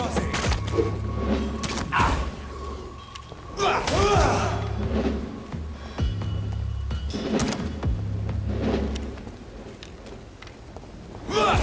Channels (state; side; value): identical; both; correlation 1.00